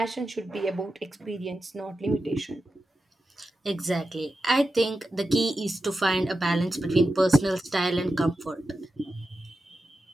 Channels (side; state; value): both; normal; correlation 0.91